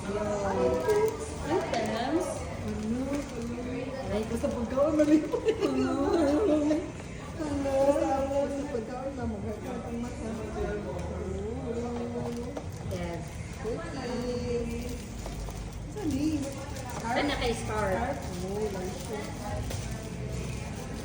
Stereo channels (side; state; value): both; identical; correlation 1.00